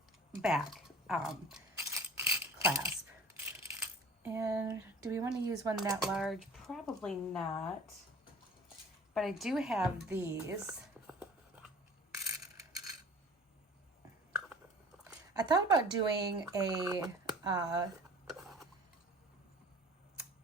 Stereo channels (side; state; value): both; normal; correlation 0.45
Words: back clasp. And do we want to use one that large? Probably not. But I do have these. I thought about doing a,